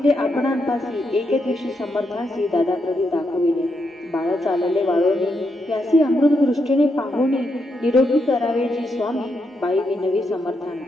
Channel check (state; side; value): normal; both; correlation 0.81